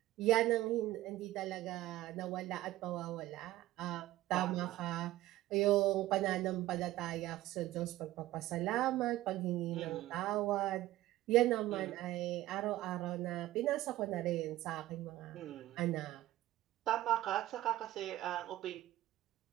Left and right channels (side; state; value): left; quieter; 15.6 dB